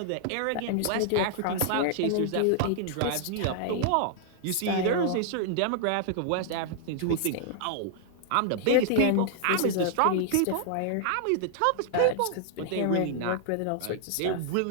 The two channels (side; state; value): both; different; correlation -0.01